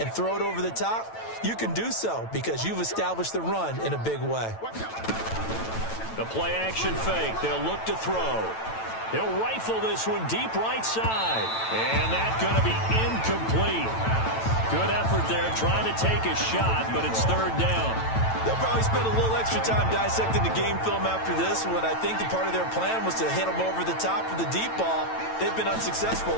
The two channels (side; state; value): right; late; 9.0 ms